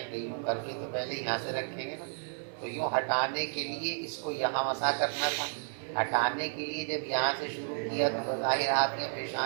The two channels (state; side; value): silent; left; digital silence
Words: گے یوں کر کے تو پہلے یہاں سے رکھیں گے نا، تو یوں ہٹانے کے لیے اس کو یہاں مسح کرنا تھا، ہٹانے کے لیے جب یہاں سے شروع کیا تو بظاہر ہاتھ یا